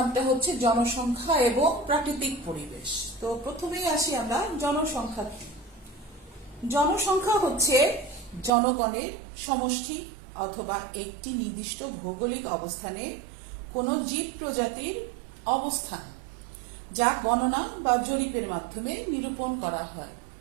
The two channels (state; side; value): drops out; left; at 8.5 s